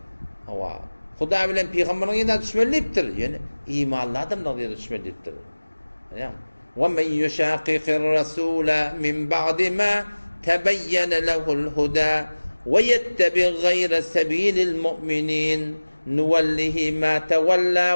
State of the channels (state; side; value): inverted; both; correlation -1.00